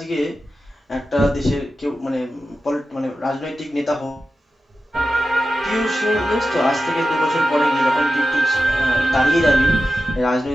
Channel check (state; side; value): normal; both; correlation 0.93